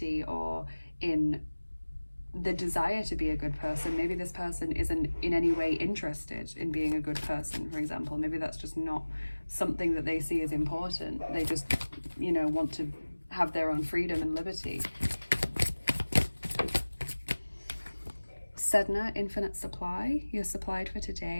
or in the desire to be a good person. Maybe this person isn't in any way interested in being a good person, for example. Maybe that's just not something that they see as important. They just, you know, want to have their own freedom and liberty. Seidr, infinite supply. You're supplied for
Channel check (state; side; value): inverted; both; correlation -1.00